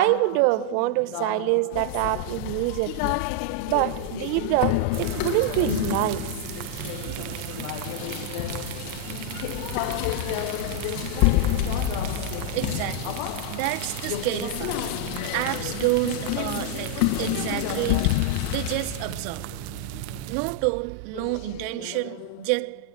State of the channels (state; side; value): different; both; correlation 0.00